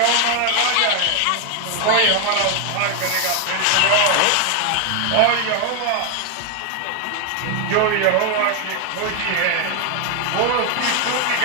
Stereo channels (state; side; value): different; both; correlation 0.01